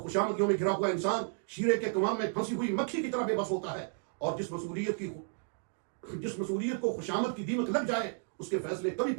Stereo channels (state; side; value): silent; left; 56 dB below the other